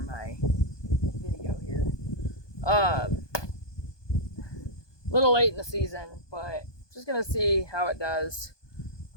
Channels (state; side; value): late; right; 1.2 ms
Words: video here. Little late in the season, but just gonna see how it does.